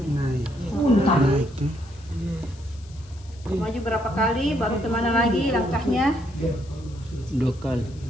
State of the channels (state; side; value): noise; left; hiss, 25 dB below the sound